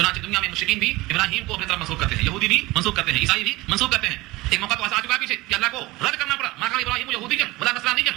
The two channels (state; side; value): quieter; left; 20.6 dB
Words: دنیا میں مشرکین بھی ابراہیم کو اپنی طرف منسوب کرتے ہیں، یہودی بھی منسوب کرتے ہیں، عیسائی بھی منسوب کرتے ہیں۔ ایک موقع تو ایسا آ چکا ہے پیچھے کہ اللہ کو رد کرنا پڑا، ما کان ابراہیم یہودیا ولا نصرانیا